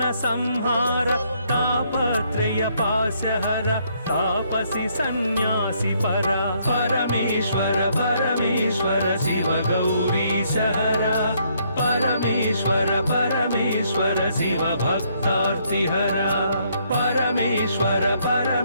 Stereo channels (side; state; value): both; inverted; correlation -0.70